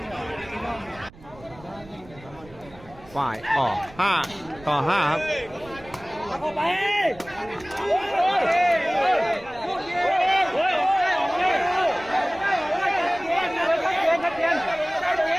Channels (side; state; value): right; noise; rumble, 22 dB below the sound